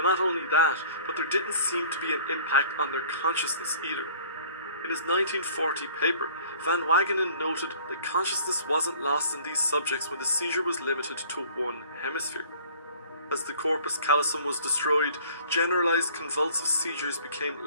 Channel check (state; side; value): inverted; both; correlation -0.51